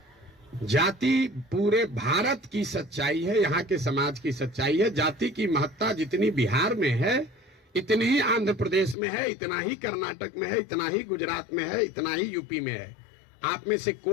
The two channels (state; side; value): drops out; right; at 9.0 s